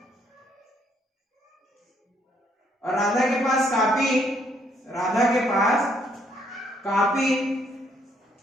और राधा के पास कापी। राधा के पास कापी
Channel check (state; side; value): normal; both; correlation 0.69